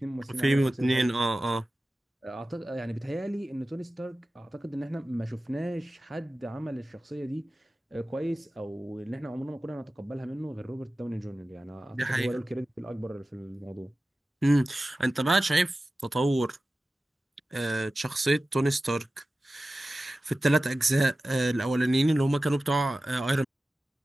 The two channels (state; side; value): normal; both; correlation 0.95